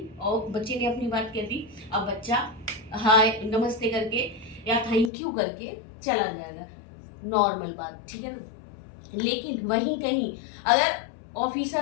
और बच्चे ने अपनी बात कह दी। अब बच्चा हाय नमस्ते करके या थैंक यू करके चला जाएगा, नॉर्मल बात, ठीक है ना। लेकिन वहीं कहीं अगर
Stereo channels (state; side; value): drops out; right; at 5.1 s